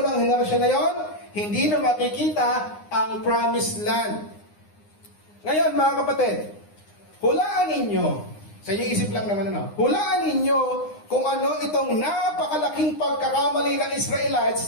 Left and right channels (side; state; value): right; late; 9.7 ms